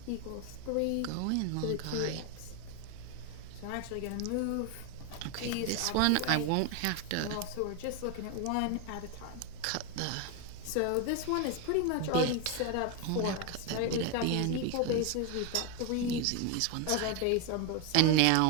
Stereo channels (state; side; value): different; both; correlation 0.01